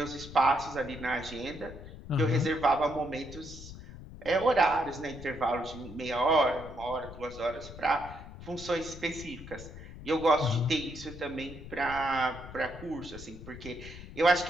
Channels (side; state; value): left; noise; rumble, 13 dB below the sound